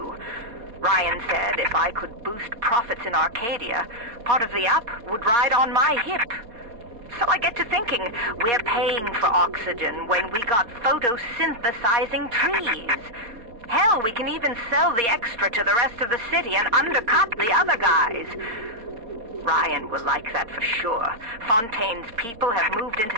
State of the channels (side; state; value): left; late; 4.2 ms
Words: Ryan said if I could boost profits in Arcadia, part of the up would ride on my hip. So I get to thinking, we're paying for oxygen when we got photosynthesizing trees. Hell, we can even sell the extra to the rest of the city and undercut the other guys. Ryan will like that for sure. Fontaine's people have moved into